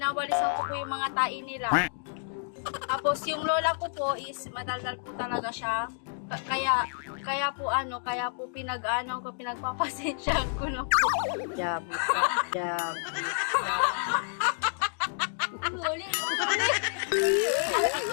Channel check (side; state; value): right; silent; digital silence